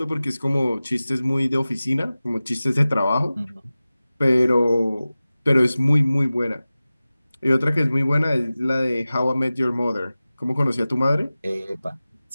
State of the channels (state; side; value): inverted; both; correlation -0.97